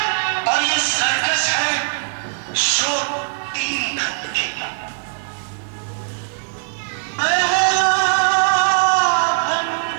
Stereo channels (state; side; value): silent; left; 56 dB below the other